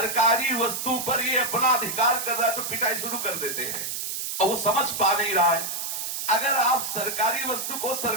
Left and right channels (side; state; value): right; noise; hiss, 4 dB below the sound